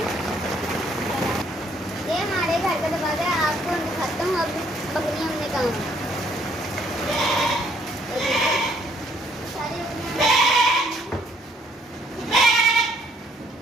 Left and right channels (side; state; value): both; normal; correlation 0.66